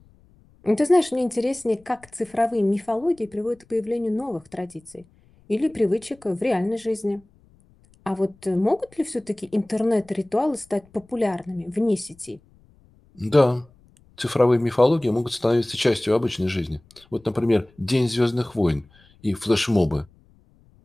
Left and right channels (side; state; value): left; noise; rumble, 30 dB below the sound